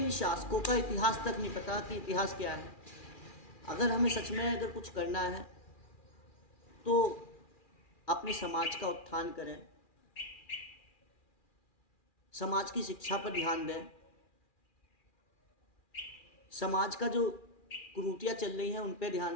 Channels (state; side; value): late; right; 2.4 ms